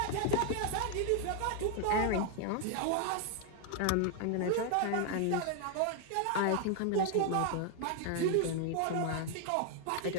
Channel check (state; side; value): different; both; correlation 0.00